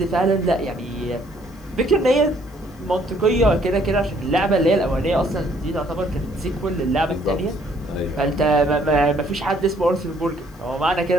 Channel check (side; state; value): left; noise; hiss, 28 dB below the sound